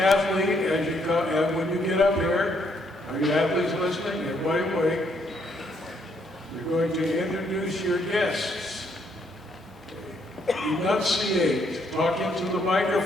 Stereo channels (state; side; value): normal; both; correlation 0.71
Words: as you come, and when you get up here, are you athletes listening? Everybody awake. You're going to introduce your guests. Enunciate, talk into the